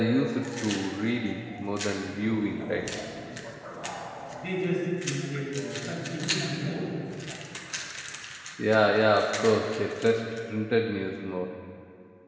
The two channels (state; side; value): identical; both; correlation 1.00